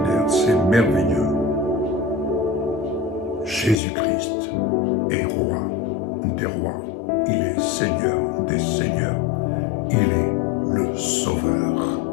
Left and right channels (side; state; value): right; drops out; at 3.8 s